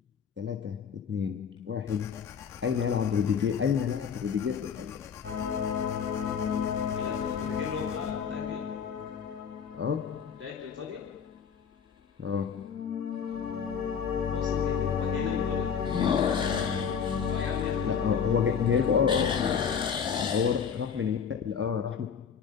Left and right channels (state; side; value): quieter; right; 7.0 dB